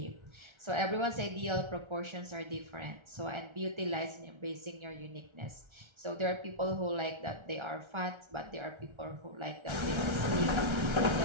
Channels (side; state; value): left; late; 1.3 ms